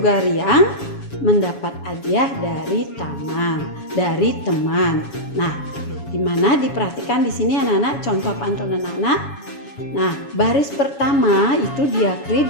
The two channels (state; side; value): late; right; 7.2 ms